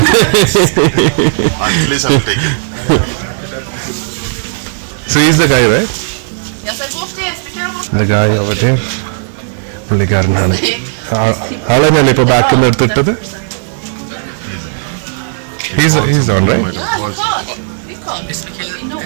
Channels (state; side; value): silent; left; digital silence